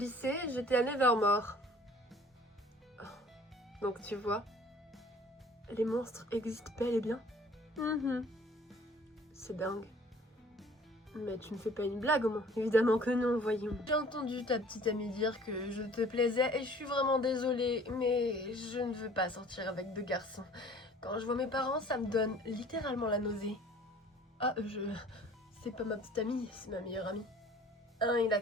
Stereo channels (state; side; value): normal; both; correlation 0.51